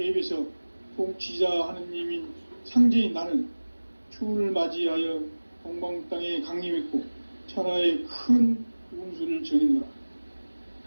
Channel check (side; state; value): both; inverted; correlation -1.00